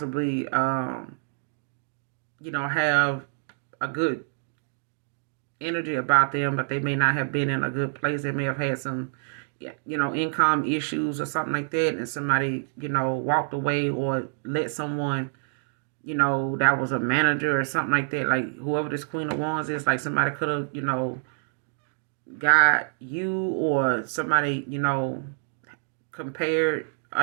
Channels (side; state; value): left; silent; digital silence